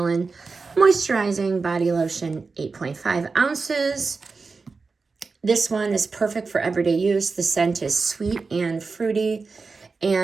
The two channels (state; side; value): quieter; left; 4.4 dB